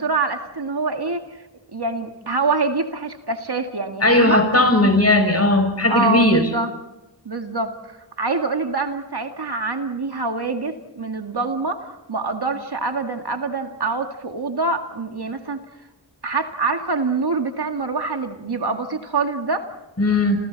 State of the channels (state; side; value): normal; both; correlation 0.02